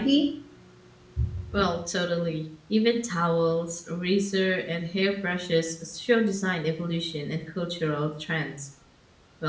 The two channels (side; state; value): both; identical; correlation 1.00